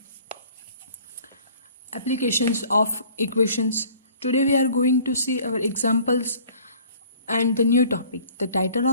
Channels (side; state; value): both; inverted; correlation -0.52